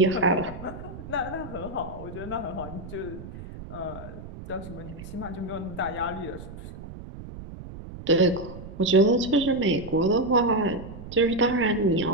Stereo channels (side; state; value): right; noise; rumble, 13 dB below the sound